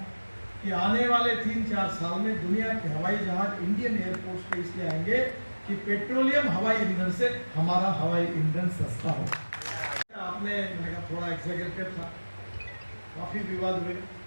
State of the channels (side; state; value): both; inverted; correlation -1.00